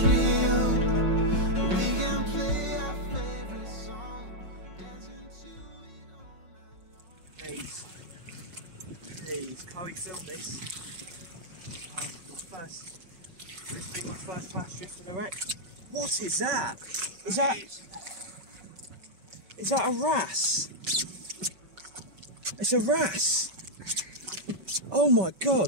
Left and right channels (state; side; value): late; left; 5.4 ms